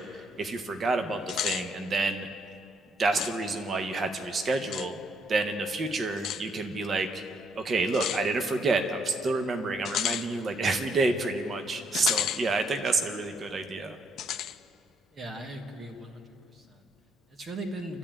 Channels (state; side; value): normal; both; correlation 0.72